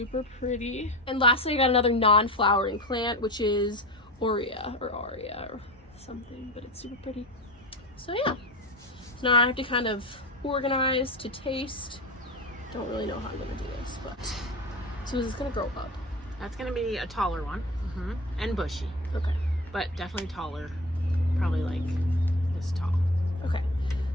pretty. And lastly, I got another non-flowering plant, which is Aurea or something, but it's super pretty. So yeah. So now I have to kind of organize to taste. Don't really know how I'm gonna do this, but so is this gonna grow up? That's gonna be a taller one, and bushy, Okay. but definitely taller. Probably like this tall. Okay.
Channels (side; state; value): both; normal; correlation 0.29